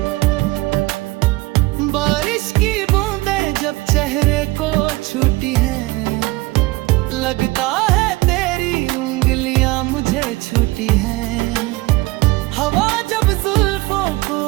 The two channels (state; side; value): quieter; left; 21.1 dB